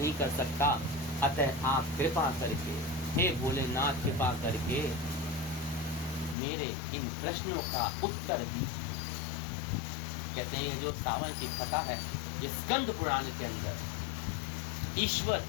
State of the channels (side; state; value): right; drops out; at 6.4 s